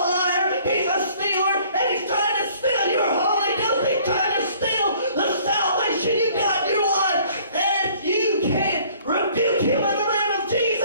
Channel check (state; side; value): inverted; both; correlation -0.56